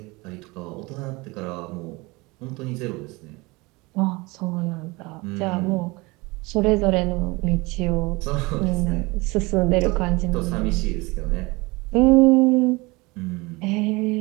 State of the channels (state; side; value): quieter; left; 24.3 dB